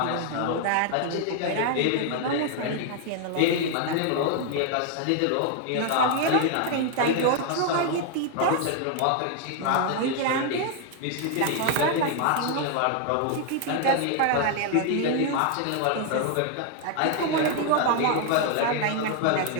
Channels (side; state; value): both; different; correlation 0.00